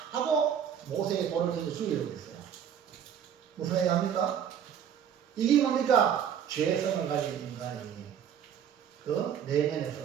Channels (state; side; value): quieter; left; 8.7 dB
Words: 하고 모세의 돌을 던져 죽이려고 했어요. 무슨 얘기합니까? 이게 뭡니까? 죄성을 가진 인간이 그 내면에서